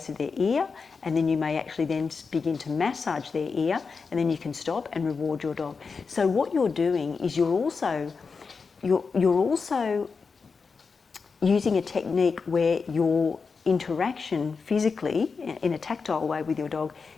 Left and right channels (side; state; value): right; quieter; 5.0 dB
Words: of their ear, and then you may actually then begin to massage their ear, and then you can stop and reward your dog. So what you're doing is you're also using a technique where your interaction physically in a tactile way with your dog